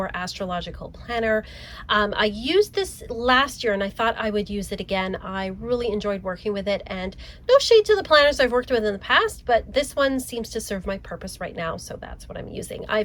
Astrological Planner. I used this last year and I thought I would use it again. I really enjoyed working with it, and no shade to the planners I've worked with in the past, but this one seems to serve my purpose right now, so that's what I'm using.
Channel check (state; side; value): identical; both; correlation 1.00